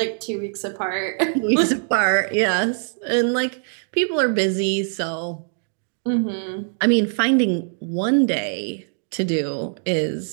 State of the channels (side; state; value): left; silent; 56 dB below the other